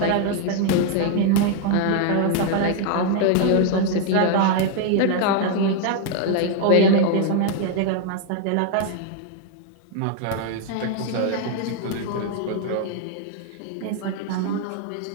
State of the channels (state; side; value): different; both; correlation 0.00